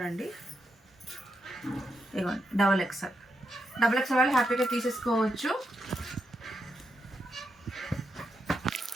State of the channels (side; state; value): both; normal; correlation 0.83